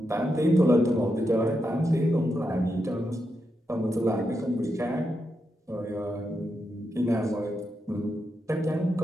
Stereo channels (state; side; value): normal; both; correlation 0.85